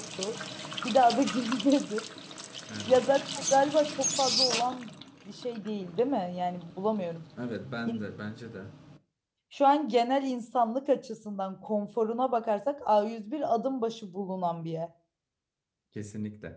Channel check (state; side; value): identical; both; correlation 1.00